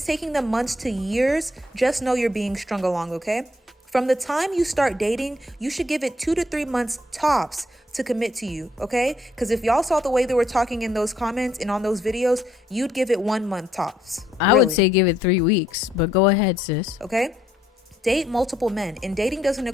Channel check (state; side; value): normal; both; correlation 0.70